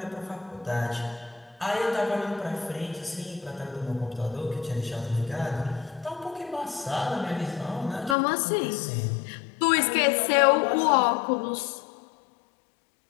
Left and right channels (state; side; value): drops out; right; at 8.2 s